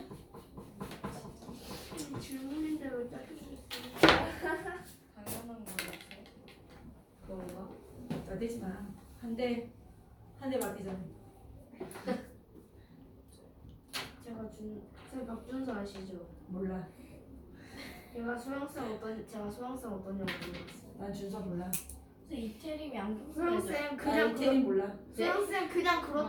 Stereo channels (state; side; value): identical; both; correlation 1.00